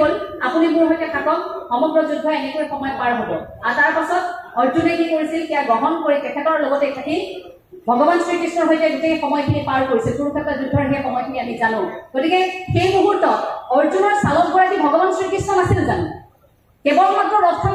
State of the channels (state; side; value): identical; both; correlation 1.00